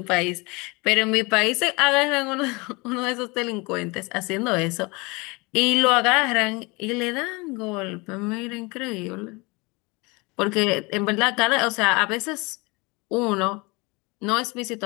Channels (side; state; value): right; quieter; 26.3 dB